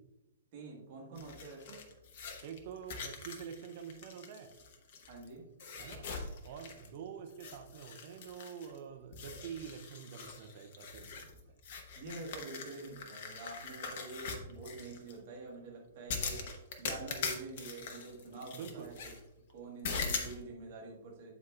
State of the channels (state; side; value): inverted; both; correlation -0.37